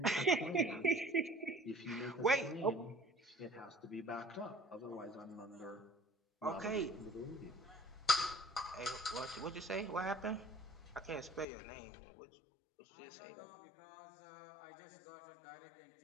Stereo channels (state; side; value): drops out; right; at 11.5 s